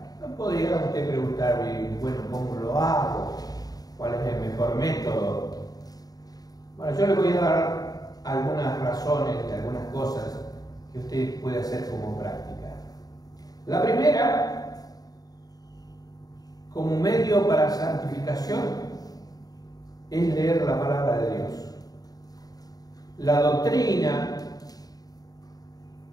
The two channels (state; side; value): late; right; 0.18 ms